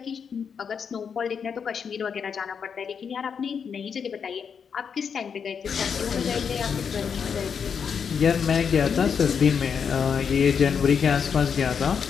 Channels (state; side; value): quieter; right; 6.7 dB